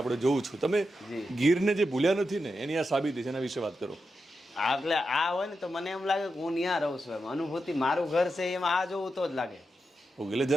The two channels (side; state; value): both; normal; correlation 0.88